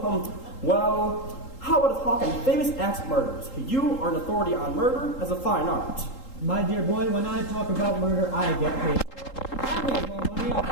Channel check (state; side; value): late; right; 3.8 ms